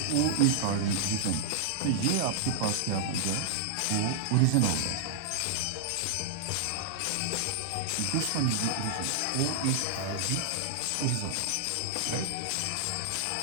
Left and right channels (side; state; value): both; different; correlation -0.01